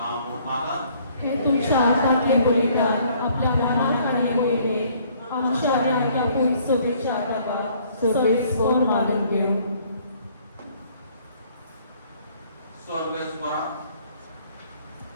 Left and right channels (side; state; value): both; inverted; correlation -0.60